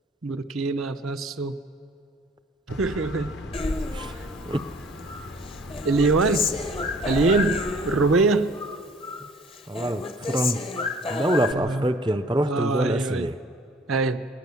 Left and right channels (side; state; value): both; normal; correlation 0.53